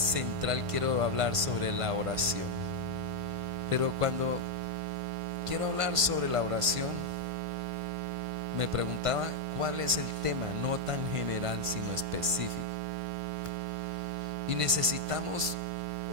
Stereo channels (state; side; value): late; left; 1.5 ms